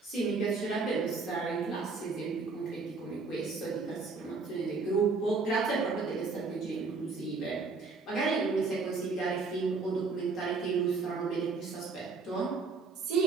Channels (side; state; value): left; quieter; 4.3 dB